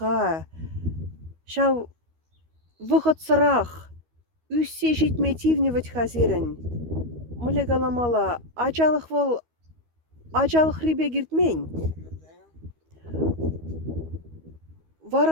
шау выход сырақ, үссе жетметивневать хазирін. Мүле галамала, ачалық рибе гиртмень.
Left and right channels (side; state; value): left; late; 13 ms